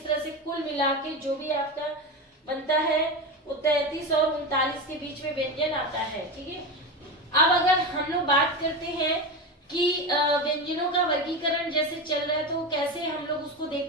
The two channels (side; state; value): both; normal; correlation 0.20